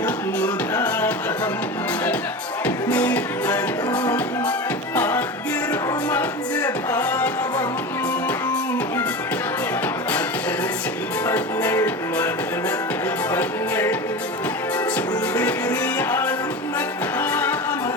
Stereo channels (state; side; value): normal; both; correlation 0.27